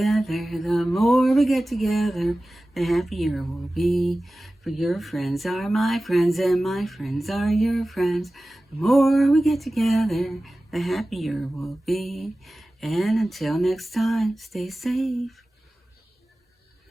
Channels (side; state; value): both; normal; correlation 0.96